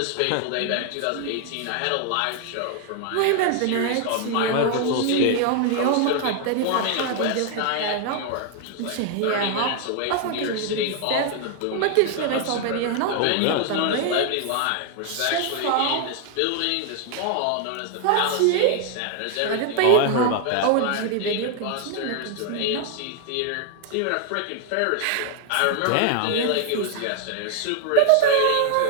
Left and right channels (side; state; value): both; different; correlation 0.00